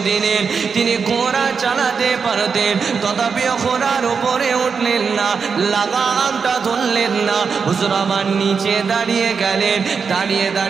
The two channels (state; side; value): quieter; left; 5.7 dB